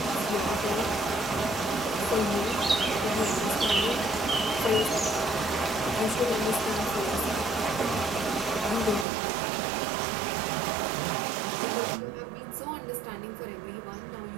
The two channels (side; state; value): left; drops out; at 9.1 s